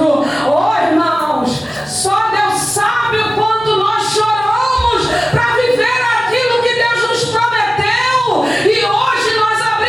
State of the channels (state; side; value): normal; both; correlation 0.97